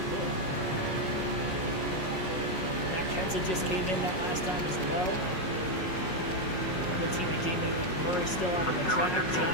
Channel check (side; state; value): right; late; 5.5 ms